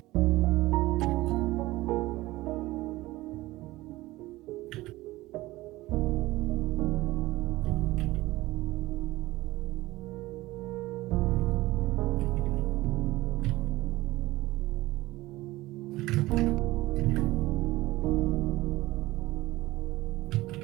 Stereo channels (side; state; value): left; quieter; 18.4 dB